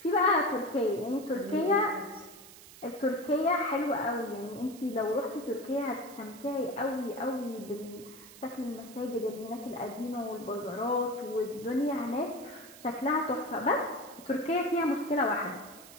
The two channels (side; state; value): right; noise; hiss, 18 dB below the sound